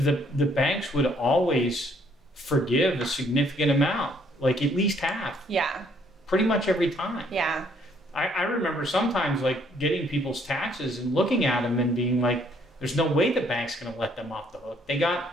banks would always forgive a significant amount, like at least half. Yeah. Pretty much every time. Yeah. I remember sometimes like getting people's taxes and looking at them and being like, there's no way the bank's going to let them off the hook. They got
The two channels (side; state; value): both; normal; correlation 0.65